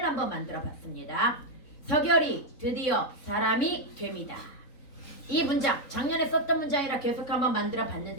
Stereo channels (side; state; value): right; late; 3.9 ms